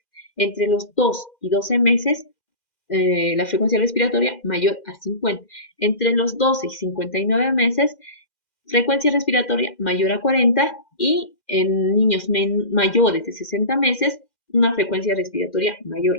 Entre los 2 y 12 meses, la frecuencia respiratoria mayor a 50. Entre los 12 y 59 meses, frecuencia respiratoria mayor a 40 y en niños mayores de 60 meses, una frecuencia respiratoria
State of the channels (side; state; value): right; late; 2.4 ms